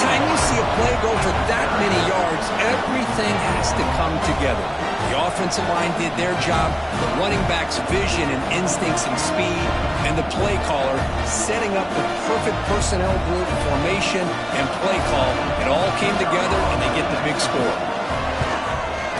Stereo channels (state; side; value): identical; both; correlation 1.00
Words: you see a play go for that many yards, everything has to come together. The offensive line did their job, the running back's vision and instincts and speed, and the play caller setting up the perfect personnel group, formation, and play call. It all came together, and they get the big score.